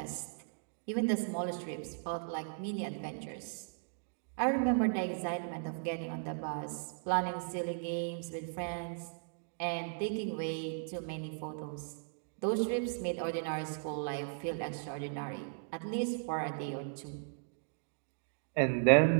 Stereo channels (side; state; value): left; silent; digital silence